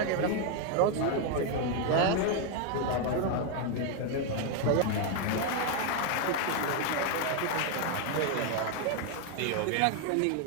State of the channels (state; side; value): different; both; correlation 0.01